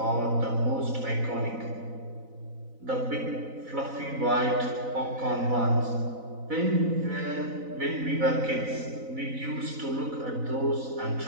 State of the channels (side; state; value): left; late; 4.0 ms